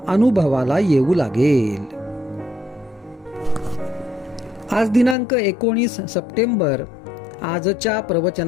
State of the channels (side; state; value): right; drops out; at 5.2 s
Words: अनुभवाला येऊ लागेल. आज दिनांक 19 सप्टेंबर. आजच्या